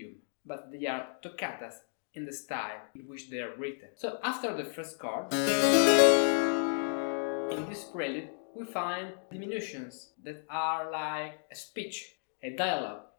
But they are toccatas in the style in which they are written. So after the first chord, in this prelude, we find diminutions that are like a speech, a dialogue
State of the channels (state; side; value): silent; right; digital silence